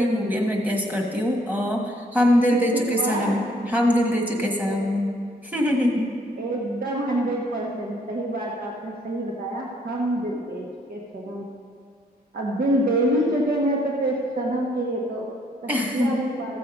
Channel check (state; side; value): normal; both; correlation 0.66